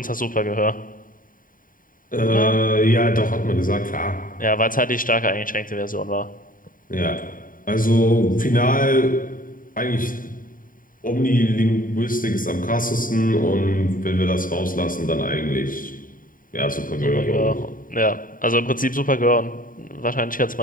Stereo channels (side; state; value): right; late; 0.40 ms